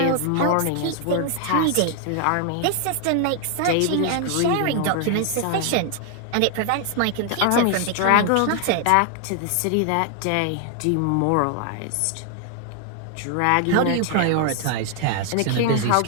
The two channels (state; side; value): different; both; correlation 0.00